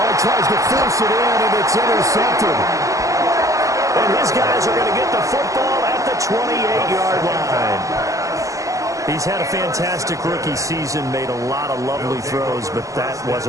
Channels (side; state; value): left; late; 0.16 ms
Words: he tries to force it in, and it's intercepted. And his guys are going to get the football at the 28-yard line. He's had a fantastic rookie season, made a lot of lovely throws, but that